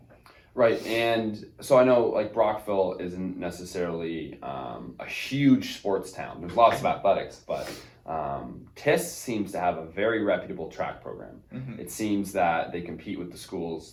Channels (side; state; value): both; identical; correlation 1.00